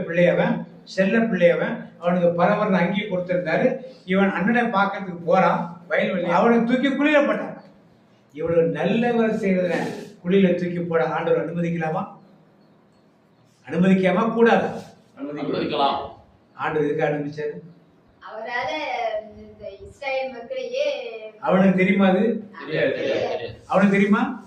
பிள்ளையவன், செல்ல பிள்ளையவன். அவனுக்கு பரவர்னு அங்கேயே கொடுத்திருந்தாரு. இவன் அண்ணனை பார்க்கறதுக்கு போறான் வயல்வெளி. அவனை தூக்கி குழியில போட்டான். இவ்வளவு நல்லவர் செய்யறத குழியில தூக்கி போட ஆண்டவர் அனுமதிக்கலாமா? அனுமதிக்காம கூடாது? அனுமதிக்கலாம். ஆண்டவர் எதுக்கு அனுமதிச்சாரு? அவரால இஸ்ரவேல் மக்களையே அவனுக்கு தெரியுமா? அது அவனுக்கு தெரியுமா?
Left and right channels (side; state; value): both; identical; correlation 1.00